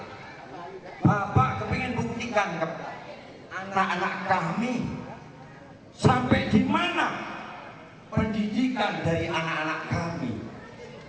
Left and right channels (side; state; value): both; identical; correlation 1.00